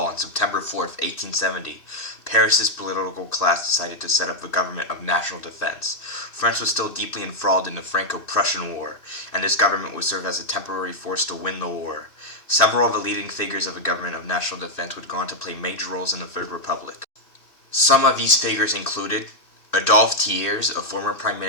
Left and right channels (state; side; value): late; right; 2.6 ms